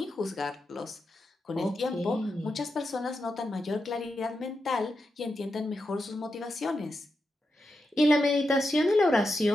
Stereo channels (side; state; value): both; normal; correlation 0.87